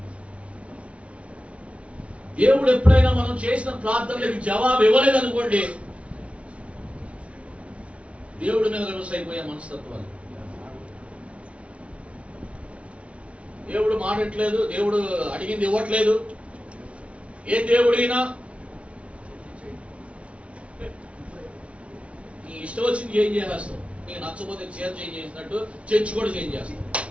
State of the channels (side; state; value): left; late; 0.062 ms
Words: దేవుడు ఎప్పుడైనా మనం చేసిన ప్రార్థనలకు జవాబు ఇవ్వలేదనుకోండి, దేవుడి మీద రివర్స్ అయిపోయే మనస్తత్వాలు. దేవుడు మాడట్లేదు, దేవుడు అడిగింది ఇవ్వట్లేదు. ఏ దేవుడైనా నీ ఇష్టం వచ్చింది చేంజ్ చేసేస్తావు. నీకు నచ్చపోతే చీర చేంజ్ చేసినట్టు చర్చి కూడా చేంజ్ చేస్తావు.